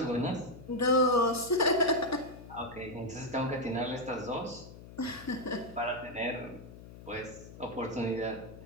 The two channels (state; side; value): noise; left; hum, 16 dB below the sound